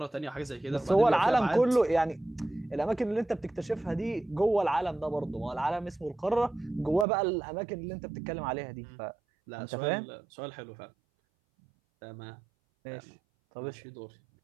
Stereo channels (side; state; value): left; drops out; at 7.1 s